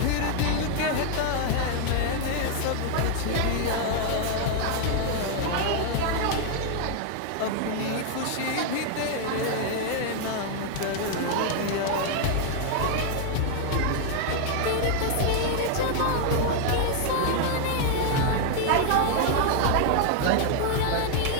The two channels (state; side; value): different; both; correlation 0.00